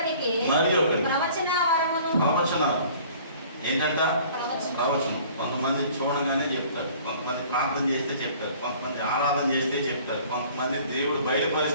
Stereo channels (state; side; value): inverted; both; correlation -0.51